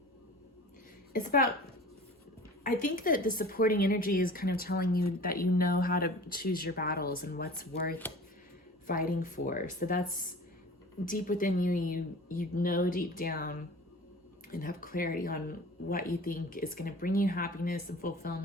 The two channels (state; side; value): normal; both; correlation 0.41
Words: It's about, I think that the supporting energy is kind of telling you that you know how to choose your battles and what's worth fighting for. So that's deep within you. You know deep down and have clarity on what you think is going to bring you happiness and